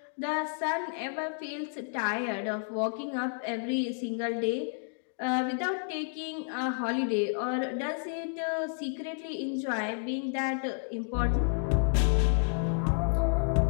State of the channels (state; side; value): silent; right; 57 dB below the other